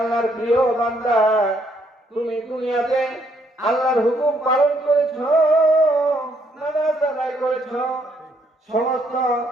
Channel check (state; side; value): normal; both; correlation 0.71